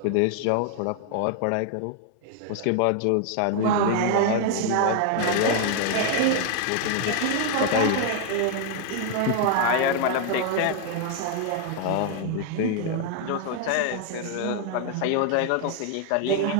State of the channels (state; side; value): different; both; correlation 0.00